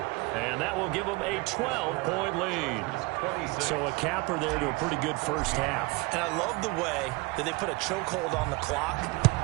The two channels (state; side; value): quieter; left; 25.0 dB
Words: And that will give them a 12-point lead. So a capper there to a pretty good first half. And I love the way that they put a chokehold on the clock